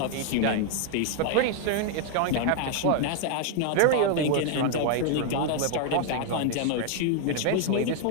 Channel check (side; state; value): both; different; correlation 0.00